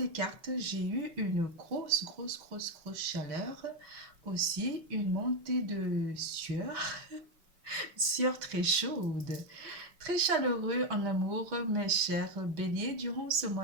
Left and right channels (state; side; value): late; left; 6.2 ms